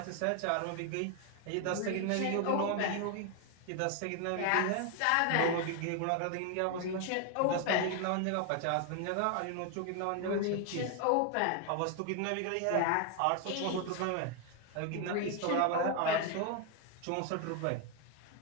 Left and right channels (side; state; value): both; different; correlation 0.01